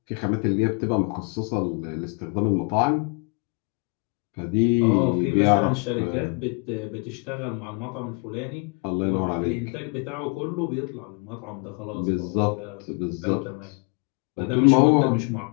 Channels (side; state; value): right; quieter; 33.7 dB